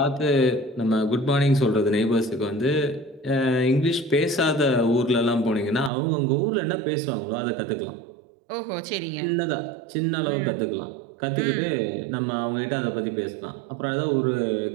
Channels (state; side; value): drops out; left; at 5.9 s